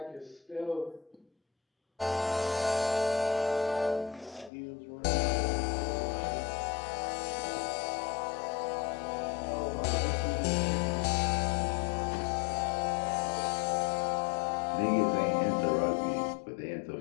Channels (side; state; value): right; drops out; at 4.5 s